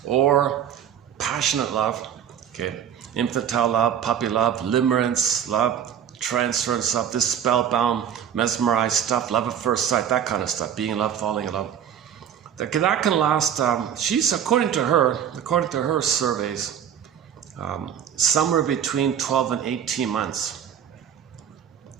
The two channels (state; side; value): quieter; left; 9.0 dB